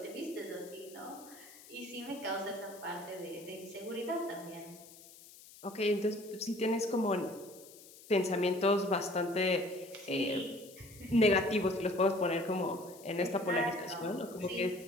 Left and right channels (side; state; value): left; noise; hiss, 20 dB below the sound